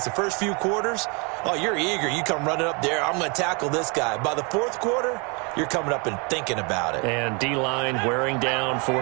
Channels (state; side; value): quieter; left; 32.2 dB